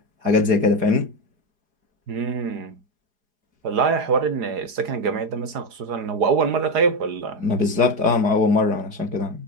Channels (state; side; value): late; left; 4.8 ms